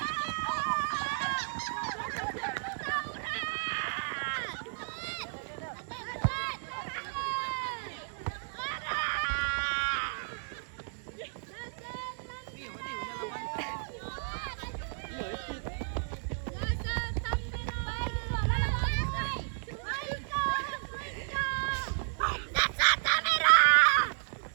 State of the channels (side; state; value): left; silent; digital silence